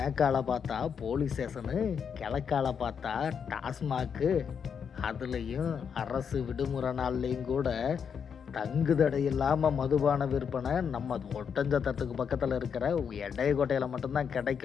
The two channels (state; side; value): quieter; right; 7.0 dB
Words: பார்த்தா போலீஸ் ஸ்டேஷனு, கிழக்கால பார்த்தா டாஸ்மாக்கு, அதுலேயும் அரசு விடுமுறை நாள்லேயும் கூட தங்குதடை இல்லாமல் மதுபான விற்பனை நம்ம ஒட்டஞ்சத்திரத்துக்கு பக்கத்தில் இருக்கிற எடையக்கோட்டையில் மட்டும்தான்